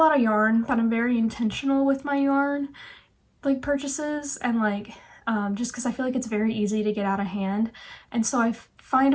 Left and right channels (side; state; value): both; identical; correlation 1.00